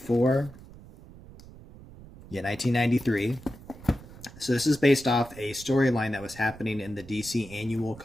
Yeah, 1993. So this is based off a storyline that was happening in the DC annual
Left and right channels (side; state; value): right; noise; rumble, 19 dB below the sound